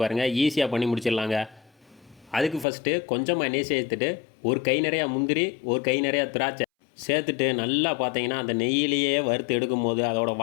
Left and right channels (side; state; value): right; drops out; at 2.7 s